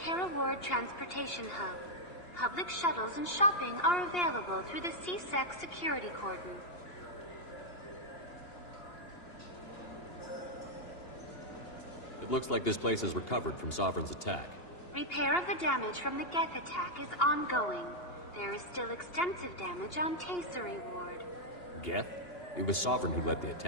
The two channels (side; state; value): right; late; 2.8 ms